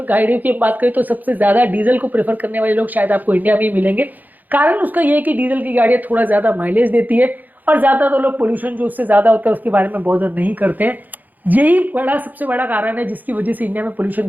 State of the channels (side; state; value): left; late; 0.083 ms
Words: गाड़ियों की बात करें तो सबसे ज्यादा डीजल को प्रेफर करने वाले लोग शायद आपको इंडिया में ही मिलेंगे। कारण उसका ये है कि डीजल की गाड़ियां थोड़ा ज्यादा माइलेज देती है और ज्यादा तो लोग पोल्यूशन जो उससे ज्यादा होता है उसके बारे में बहुत नहीं करते हैं। यही सबसे बड़ा कारण है जिसकी वजह से इंडिया में पोल्यूशन